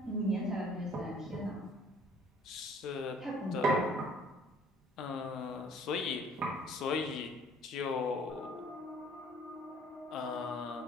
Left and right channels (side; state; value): both; normal; correlation 0.56